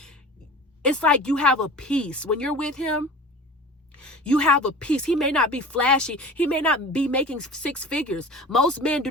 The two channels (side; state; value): both; normal; correlation 0.39